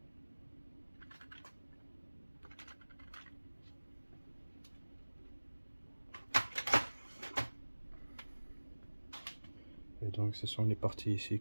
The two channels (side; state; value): both; inverted; correlation -1.00